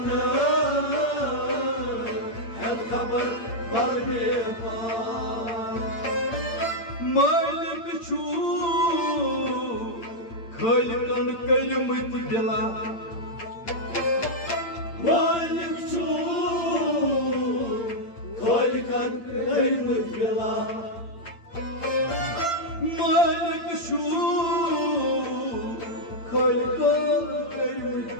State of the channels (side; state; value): right; late; 8.8 ms